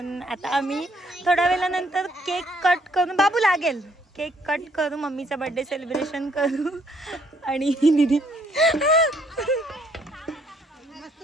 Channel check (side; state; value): both; normal; correlation 0.67